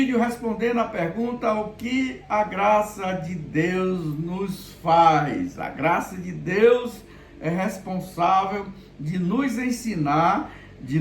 respondendo a pergunta: o que a graça de Deus nos faz? A graça de Deus é responsável de nos ensinar, de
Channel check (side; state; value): both; identical; correlation 1.00